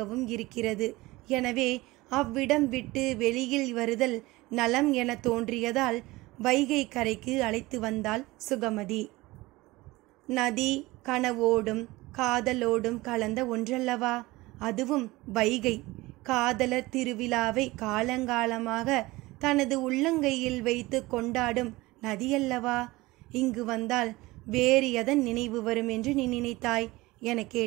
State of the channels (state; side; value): quieter; left; 20.5 dB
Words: இருக்கிறது. எனவே அவ்விடம் விட்டு வெளியில் வருதல் நலம் என தோன்றியதால் வைகை கரைக்கு அழைத்து வந்தாள் சுகமதி. நதி கனவோடும் காதலோடும் கலந்த ஒன்றல்லவா? அதுவும் வைகை. காதலர் திருவிழாவை காலங்காலமாக தனது உள்ளங்கையில் வைத்து கொண்டாடும் நதியல்லவா? இங்கு வந்தால் வேறு எதன் நினைவு வரும் என்று நீ நினைத்தாய் என